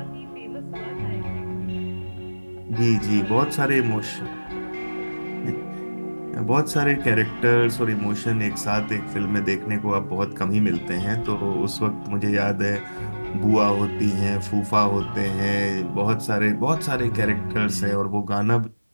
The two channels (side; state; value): both; inverted; correlation -1.00